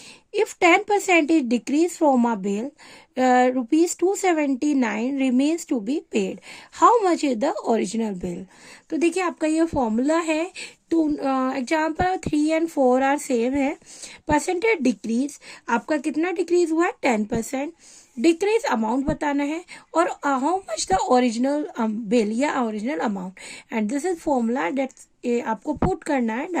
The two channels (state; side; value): identical; both; correlation 1.00